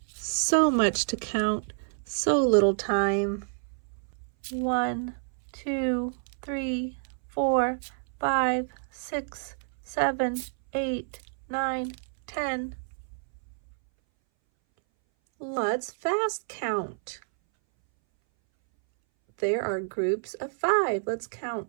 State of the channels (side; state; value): left; silent; 59 dB below the other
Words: So much to count, so little time. 1, 2, 3, 4, 5, 6, 7, 8, 9, 10. Let's fast count. There are groups of 5. Let's